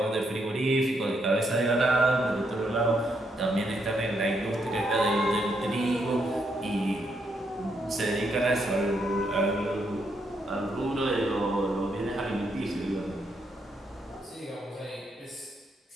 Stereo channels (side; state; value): both; normal; correlation 0.77